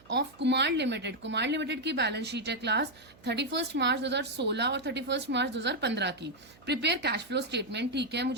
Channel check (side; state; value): right; noise; hum, 26 dB below the sound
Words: of Kumar limited. Kumar limited की बैलेंस शीट है क्लास 31 मार्च 2016 और 31 मार्च 2015 की। प्रिपेयर कैश फ्लो स्टेटमेंट, ठीक है।